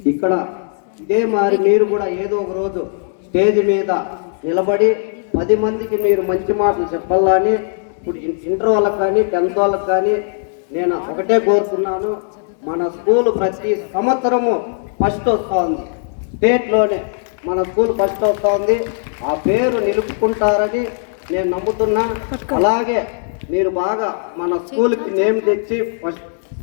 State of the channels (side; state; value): right; silent; digital silence